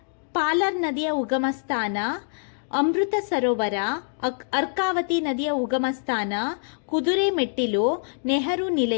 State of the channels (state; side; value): silent; right; digital silence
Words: ಪಾಲರ್ ನದಿಯ ಉಗಮ ಸ್ಥಾನ, ಅಮೃತ ಸರೋವರ, ಅರ್ಕಾವತಿ ನದಿಯ ಉಗಮ ಸ್ಥಾನ, ಕುದುರೆ ಮೆಟ್ಟಿಲು, ನೆಹರು